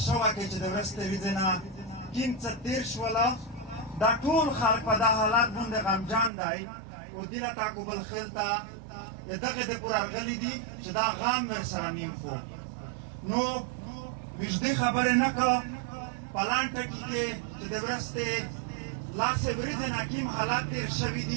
شوه کې چې د ورستې ورځې نه کیم څه تېر شوله دا ټول خلک په دا حالت باندې غمجان دی او دې له تعقب الخیل ته دغه د پور راغلي دي چې دا غم ورسره نیم خو نو وجدي خبرې نه کړه په لانټه کې چې د ورستې لاسې ورځې نه کیم حالات تېر شوي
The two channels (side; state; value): left; drops out; at 6.3 s